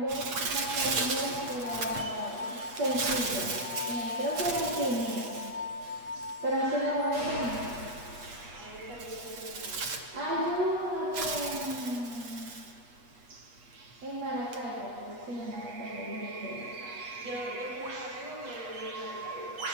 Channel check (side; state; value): left; late; 8.3 ms